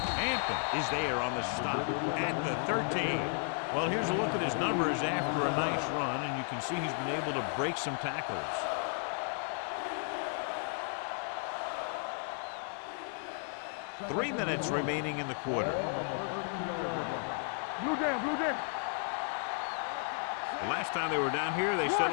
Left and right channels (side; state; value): right; silent; 55 dB below the other